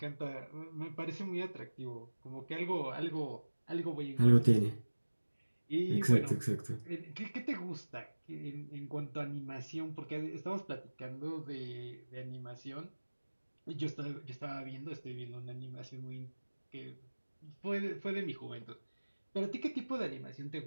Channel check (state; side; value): inverted; both; correlation -1.00